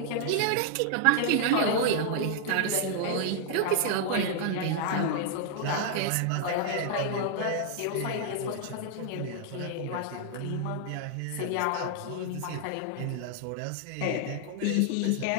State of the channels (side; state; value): both; different; correlation 0.00